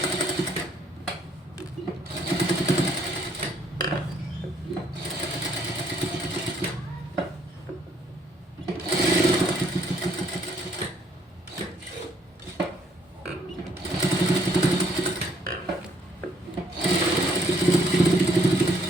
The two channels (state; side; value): normal; both; correlation 0.66